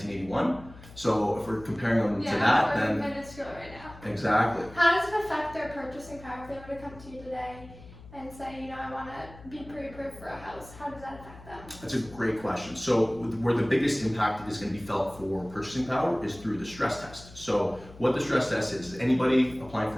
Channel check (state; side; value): noise; left; hum, 19 dB below the sound